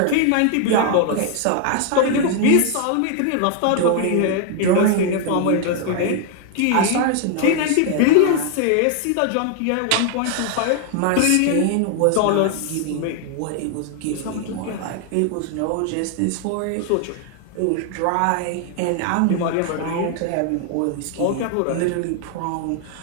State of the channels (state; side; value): different; both; correlation 0.00